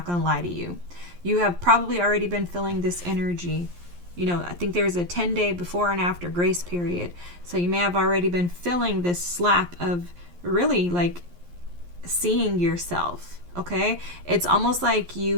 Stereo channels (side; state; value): left; late; 11 ms